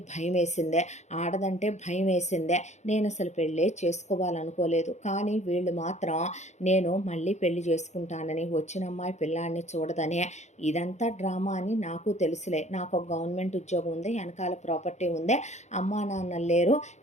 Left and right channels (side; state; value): right; late; 0.33 ms